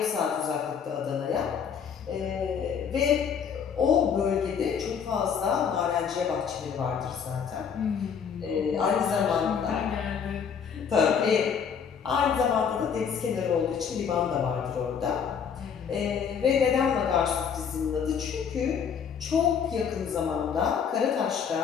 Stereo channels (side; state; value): right; quieter; 7.1 dB